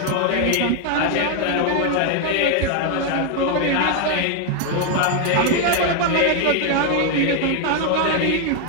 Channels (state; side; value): different; both; correlation 0.01